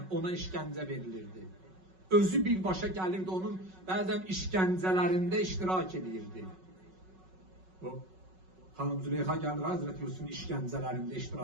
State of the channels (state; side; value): late; left; 5.4 ms